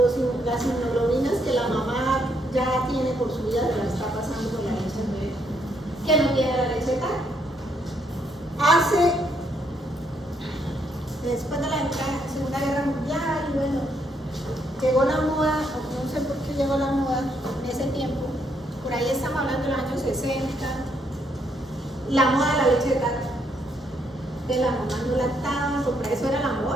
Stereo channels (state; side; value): normal; both; correlation 0.74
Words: que la mamá ya tiene por su vida, se la está pasando por la leche del bebé, que no tiene la leche tal. Después de la Segunda Guerra Mundial, y bueno, llegó la moda, no sé por qué llegó la moda en ese tiempo, por ahí estamos hablando de los años 60, la moda de la leche de tarro, de la mamá no lactaban, porque eso era la